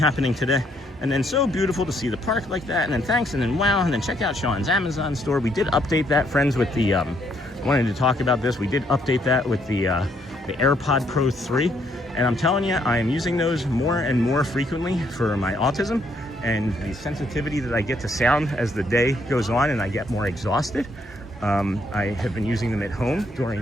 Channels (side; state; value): both; normal; correlation 0.71